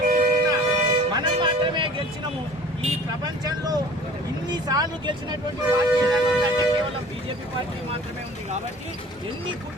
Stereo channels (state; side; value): normal; both; correlation 0.46